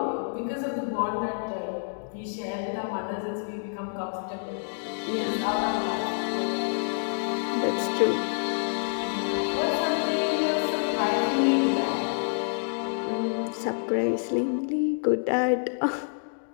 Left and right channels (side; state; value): right; silent; digital silence